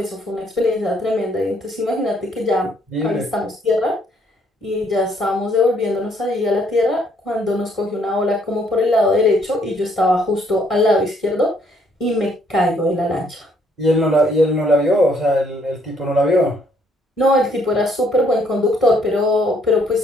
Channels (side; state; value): both; normal; correlation 0.67